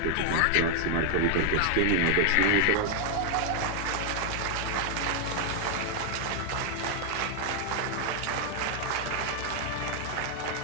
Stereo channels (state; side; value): different; both; correlation 0.00